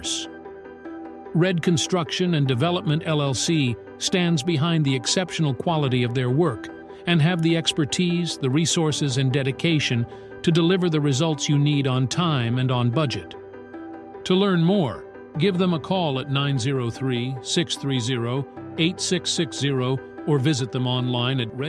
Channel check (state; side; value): identical; both; correlation 1.00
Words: Red Construction and Development LLC stands behind the exceptional quality of their work and have the expertise, the resources, and dedication to deliver the results you need on time and on budget. To learn more, give them a call at 903-630-8660 or visit them online at